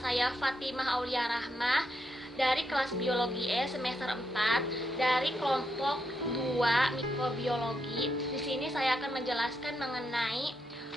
saya Fatimah Aulia Rahmah dari kelas Biologi E semester 4 dari kelompok 2 Mikrobiologi. Di sini saya akan menjelaskan mengenai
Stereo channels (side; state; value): both; normal; correlation 0.81